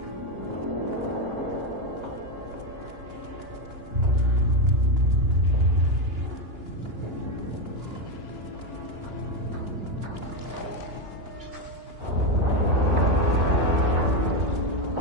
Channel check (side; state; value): left; late; 2.9 ms